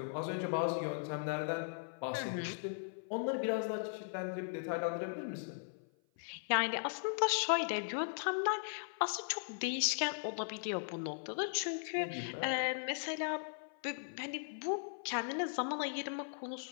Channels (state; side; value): silent; right; 52 dB below the other